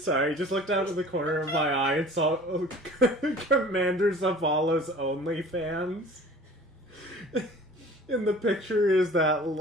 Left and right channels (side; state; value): both; normal; correlation 0.45